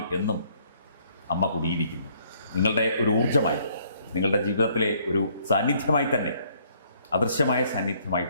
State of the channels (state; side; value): inverted; both; correlation -0.65